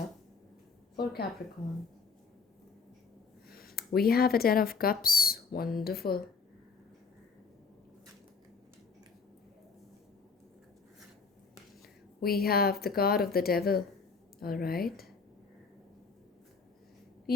for Capricorn. We have a Ten of Cups. Wonderful. We have the card of the Devil. All right.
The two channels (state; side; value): quieter; right; 5.0 dB